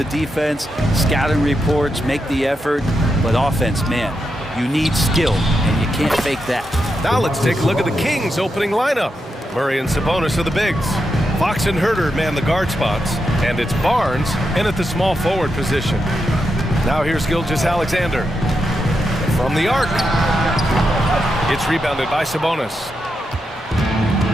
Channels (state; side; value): normal; both; correlation 0.85